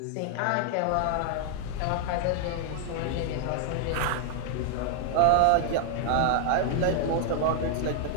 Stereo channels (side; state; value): both; different; correlation 0.00